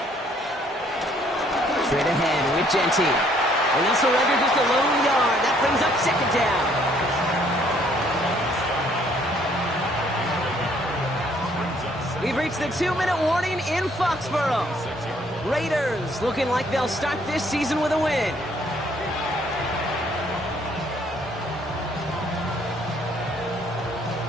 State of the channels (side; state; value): both; normal; correlation 0.64